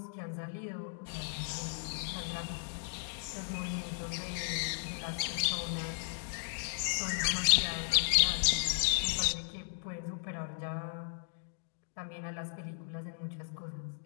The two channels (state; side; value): silent; right; digital silence